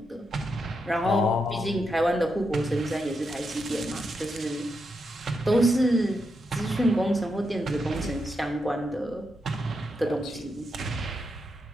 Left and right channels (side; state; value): both; normal; correlation 0.84